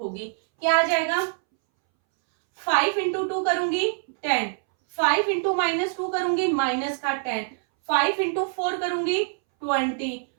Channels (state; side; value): silent; left; 62 dB below the other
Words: क्या आ जाएगा, 5 इंटू 2 करूंगी 10, 5 इंटू -2 करूंगी माइनस का 10, 5 इंटू 4 करूंगी 20,